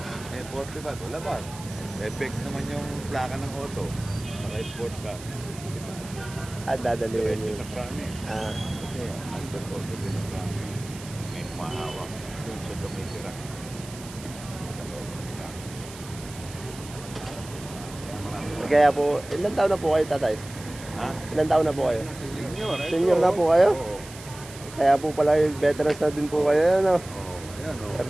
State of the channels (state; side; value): noise; right; hiss, 16 dB below the sound